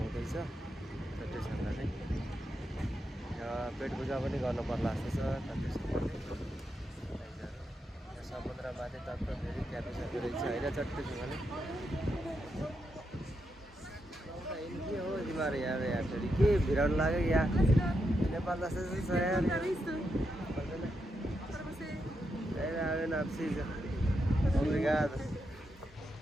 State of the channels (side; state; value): both; normal; correlation 0.84